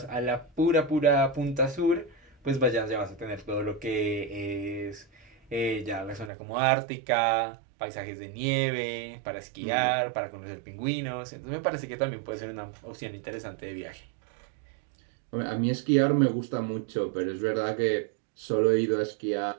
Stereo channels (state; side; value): drops out; left; at 6.3 s